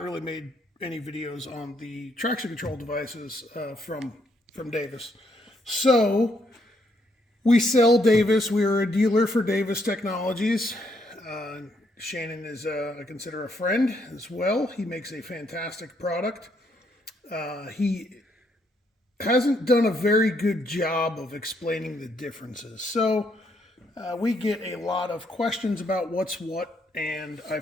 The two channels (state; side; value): normal; both; correlation 0.73